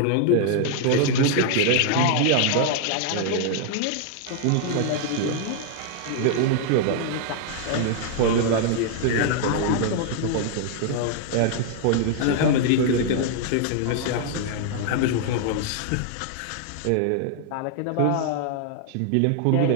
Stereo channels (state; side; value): different; both; correlation -0.01